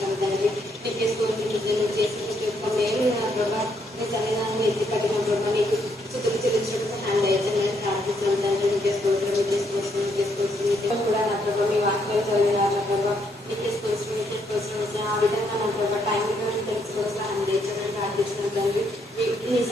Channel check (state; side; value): normal; both; correlation 0.73